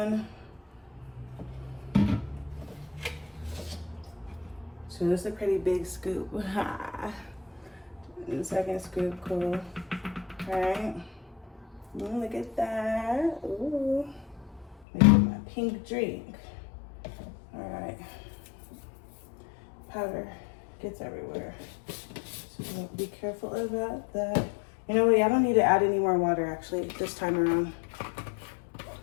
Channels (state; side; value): drops out; right; at 14.9 s